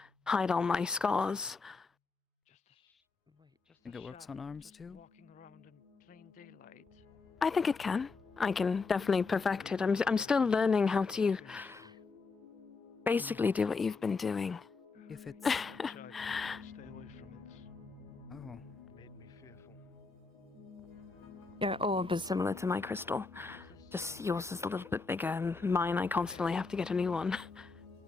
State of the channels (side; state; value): right; quieter; 4.4 dB